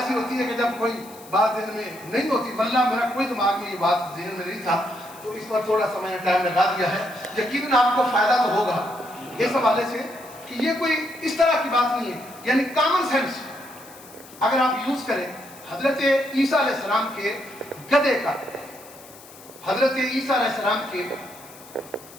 ہوتی ہے کہ جب کوئی بات ذہن میں نہیں ہوتی، واللہ میرا کوئی دماغ میں یہ بات ذہن میں نہیں تھا، تو اس پر تھوڑا سا میں نے ٹائم لگا دیا ہے۔ یقیناً آپ کو فائدہ تو ہوگا اس حوالے سے کہ یہ کوئی اس طرح کی بات نہیں ہے، یعنی کامن سینس اگر آپ یوز کریں۔ حضرت عیسیٰ علیہ السلام کے گدھے کا، حضرت عیسیٰ علیہ السلام کے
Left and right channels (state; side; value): noise; left; hiss, 20 dB below the sound